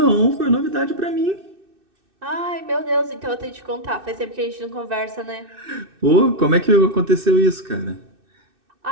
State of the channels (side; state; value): left; late; 2.6 ms